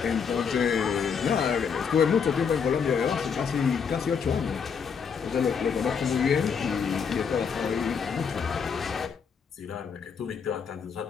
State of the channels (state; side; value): quieter; right; 6.4 dB